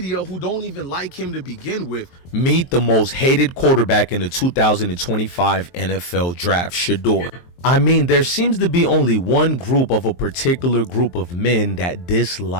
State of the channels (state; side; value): late; right; 23 ms